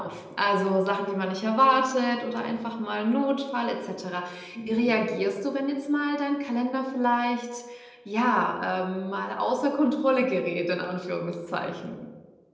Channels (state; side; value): identical; both; correlation 1.00